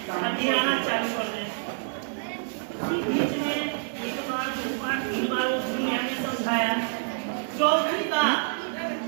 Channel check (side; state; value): left; silent; 60 dB below the other